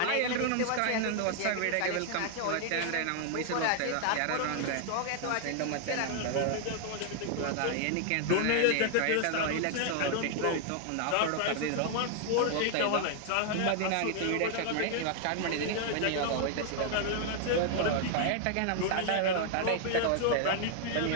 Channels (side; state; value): both; different; correlation 0.00